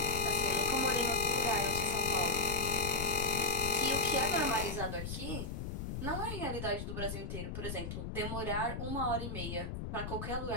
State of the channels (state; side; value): noise; left; rumble, 5 dB below the sound